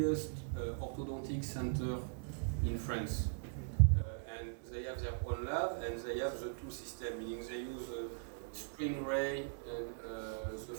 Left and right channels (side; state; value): left; silent; digital silence